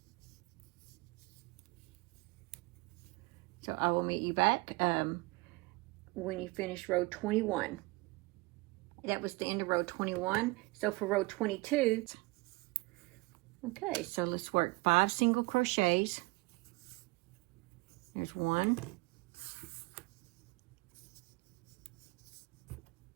So I will meet you back when you finish row 21. That was the end of row 21. So for row 22, okay, so let's work 5 single crochets. There's 1,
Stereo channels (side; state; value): left; quieter; 24.1 dB